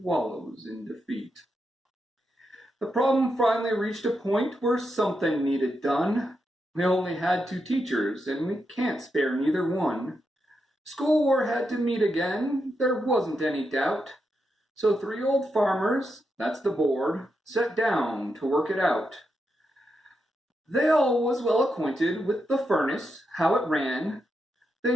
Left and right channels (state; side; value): normal; both; correlation 0.84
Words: in defeat. The problem finally reached a point where something needed done. We only had 2 teachers, and we can't spare neither one. School war had to meet again, there wasn't any doubt. So 3 old farmers, that's the board, sat down to work it out. They all was well acquainted with the furnace, how it ran. They